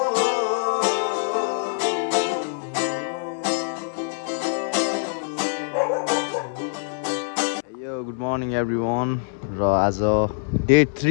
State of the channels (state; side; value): silent; right; 63 dB below the other